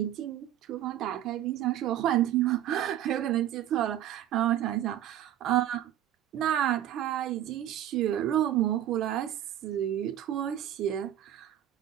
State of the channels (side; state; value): left; quieter; 11.9 dB